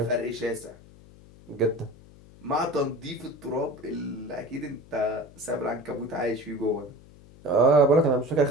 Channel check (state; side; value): noise; left; hum, 22 dB below the sound